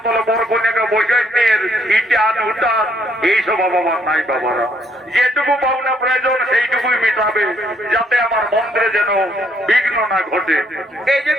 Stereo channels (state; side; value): normal; both; correlation 0.68